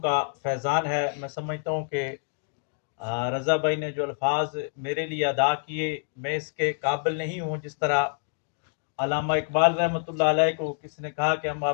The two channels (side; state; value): right; silent; digital silence